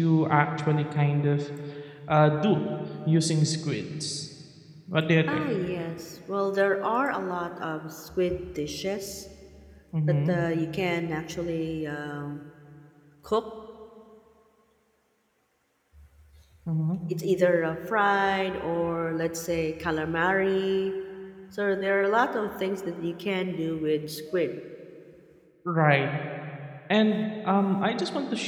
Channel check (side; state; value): both; identical; correlation 1.00